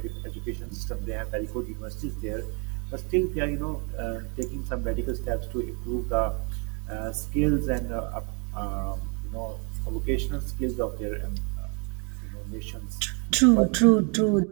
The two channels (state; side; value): quieter; left; 34.9 dB